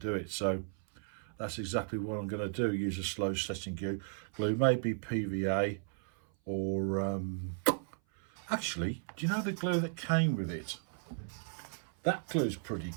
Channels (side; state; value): left; silent; 54 dB below the other